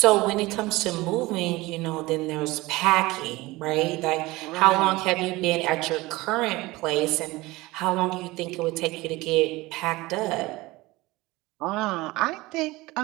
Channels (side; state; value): left; quieter; 20.5 dB